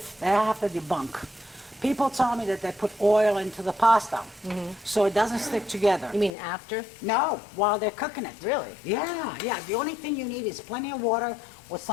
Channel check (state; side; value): drops out; right; at 6.3 s